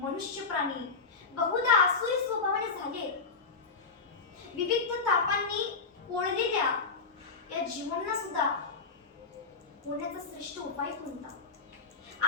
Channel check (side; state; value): right; quieter; 4.6 dB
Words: प्राणी बहुधा आसुरी स्वभावाने झाले. विविध तापांनी पोळलेल्या या जीवांना सुद्धा होण्याचा श्रेष्ठ उपाय कोणता?